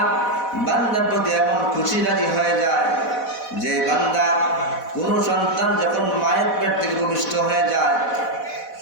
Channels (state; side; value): late; right; 4.1 ms